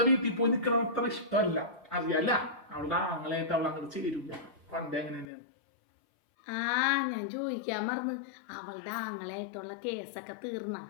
വീട്ടിൽ പോയി നിൽക്കണം അത്ര ഇഷ്ടമല്ല, അറിയാല്ല. അവളുടെ ആങ്ങളായിട്ട് അവൾ അങ്ങോട്ട് ചേരൂല. പണ്ടേ അങ്ങനെ തന്നെയാണ്. ഞാൻ ചോദിക്കാൻ മറന്ന്, അവളുടെ ആങ്ങളായിട്ടുള്ള കേസൊക്കെ തീർന്ന?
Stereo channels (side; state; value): right; drops out; at 5.2 s